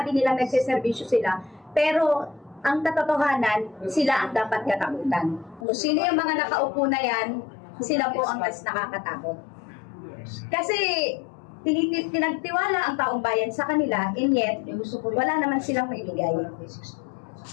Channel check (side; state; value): right; drops out; at 5.7 s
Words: nilang nagsiservisyo sila, pero ang katotohanan, sila ang dapat katakutan. Kung sino yung mga nakaupo na yan, sila po ang mas nakakatakot. Kasi pinagtiwala ang taong bayan sa kanila, and yet, wala naman silang maibigay.